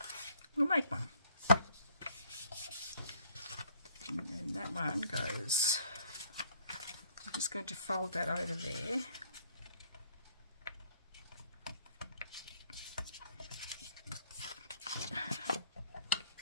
We'll make one. And then that one goes, I'm just going to fold that over there.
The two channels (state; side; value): inverted; both; correlation -0.60